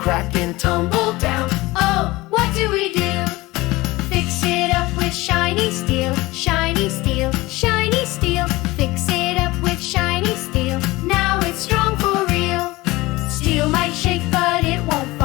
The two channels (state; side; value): quieter; right; 20.4 dB